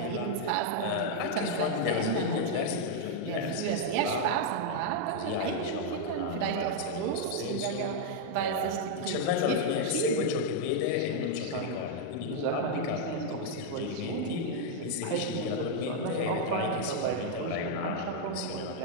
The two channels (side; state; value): both; different; correlation -0.01